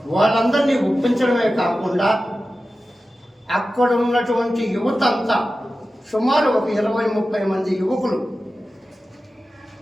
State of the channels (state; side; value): normal; both; correlation 0.94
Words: వాళ్ళందరినీ ఒప్పించడమే కాకుండా అక్కడ ఉన్నటువంటి యువత అంతా సుమారు ఒక 20-30 మంది యువకులు